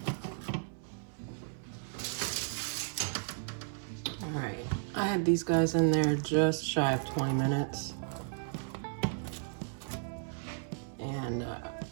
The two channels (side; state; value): left; silent; 55 dB below the other